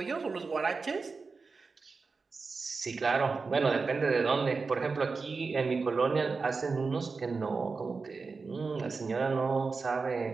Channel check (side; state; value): left; quieter; 4.4 dB